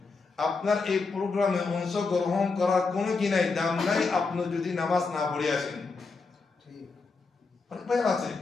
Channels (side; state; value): right; quieter; 4.3 dB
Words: আপনার এই প্রোগ্রামে অংশগ্রহণ করার কোনো কি নাই দাম নাই আপনি যদি নামাজ না পড়ে আসেন অনেক ভাই আছে